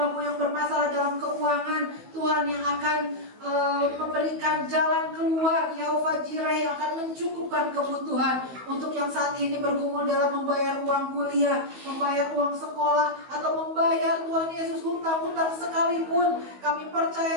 yang bermasalah dalam keuangan, Tuhan yang akan memberikan jalan keluar, Yehova Jireh yang akan mencukupkan kebutuhan untuk yang saat ini bergumul dalam membayar uang kuliah, membayar uang sekolah, atau membayar Tuhan Yesus hutang-hutang sekalipun. Kami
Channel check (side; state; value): left; late; 15 ms